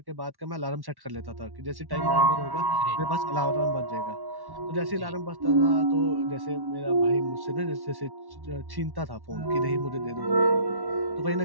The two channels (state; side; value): late; left; 1.1 ms